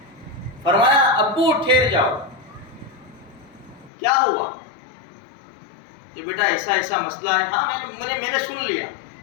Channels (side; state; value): right; drops out; at 3.9 s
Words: فرمایا ابو ٹھہر جاؤ. کیا ہوا؟ کہ بیٹا ایسا مسئلہ ہے. ہاں میں نے سن لیا.